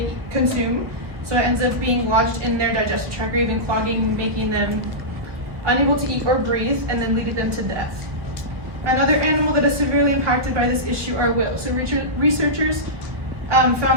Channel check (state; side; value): late; left; 1.4 ms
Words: consume, so it ends up being lodged in their digestive tract, or even clogging, making them unable to eat or breathe, and then leading them to death. Another animal that is severely impacted by this issue are whales. So researchers